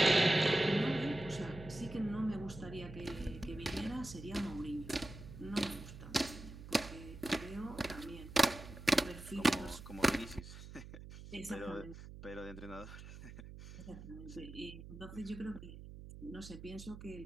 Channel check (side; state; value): right; noise; hum, 13 dB below the sound